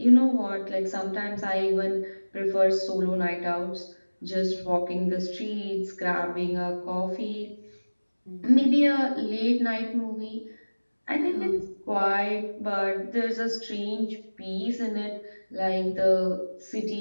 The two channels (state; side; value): inverted; both; correlation -1.00